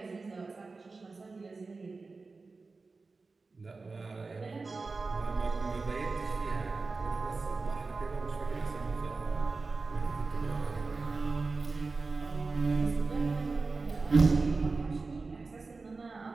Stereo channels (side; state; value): left; quieter; 3.9 dB